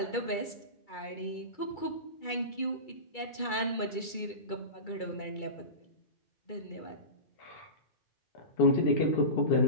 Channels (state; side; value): late; right; 2.3 ms